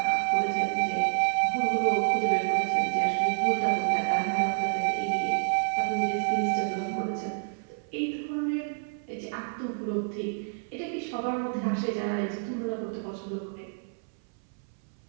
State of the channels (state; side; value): silent; left; 58 dB below the other